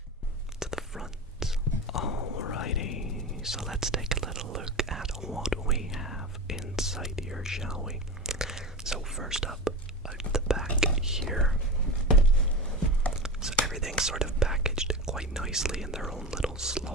to the front. Alrighty, so let's take a little look at what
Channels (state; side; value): normal; both; correlation 0.26